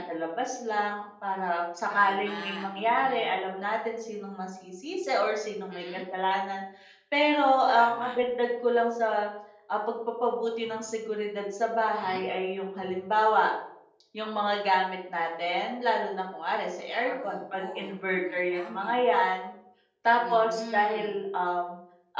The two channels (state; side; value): identical; both; correlation 1.00